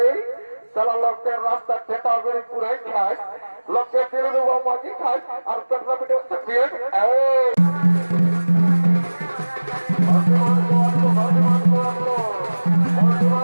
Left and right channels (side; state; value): both; inverted; correlation -1.00